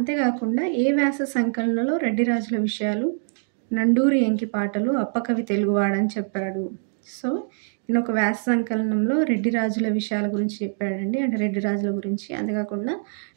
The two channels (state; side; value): silent; left; 62 dB below the other